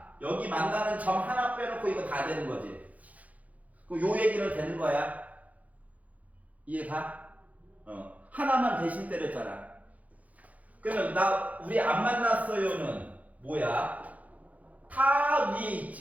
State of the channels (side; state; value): left; late; 0.073 ms